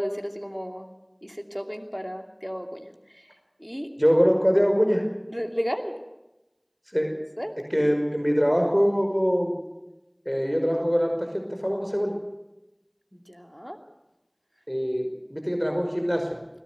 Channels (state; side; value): identical; both; correlation 1.00